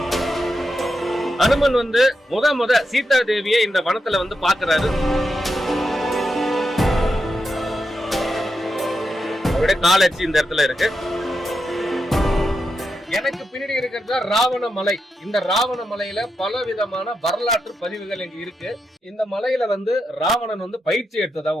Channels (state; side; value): normal; both; correlation 0.86